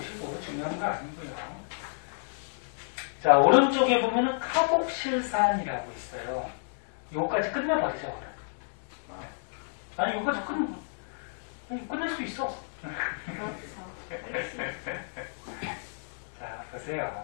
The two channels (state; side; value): silent; right; digital silence